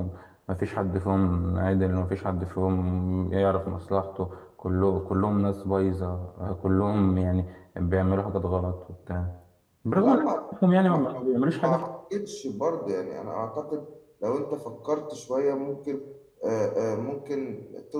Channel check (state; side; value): identical; both; correlation 1.00